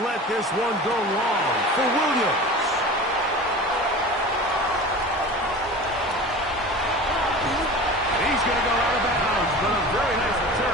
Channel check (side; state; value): both; normal; correlation 0.35